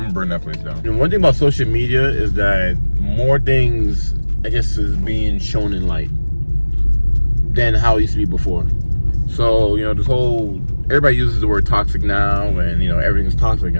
burn that place down. And one thing about social media is that more things, I guess, is being shown in light than how it used to be before. So, you know, this whole, everybody uses the word toxic now, and, you know, everything's toxic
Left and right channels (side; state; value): both; inverted; correlation -1.00